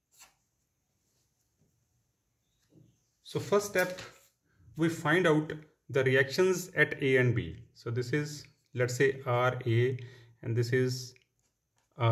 step we find out the reactions at A and B. So this is, let's say, RA and this is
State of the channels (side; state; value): both; identical; correlation 1.00